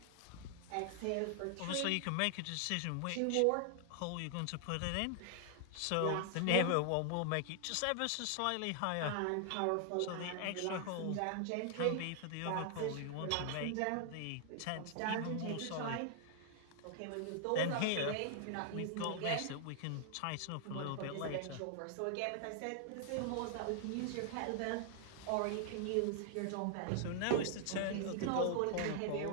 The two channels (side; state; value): both; different; correlation 0.00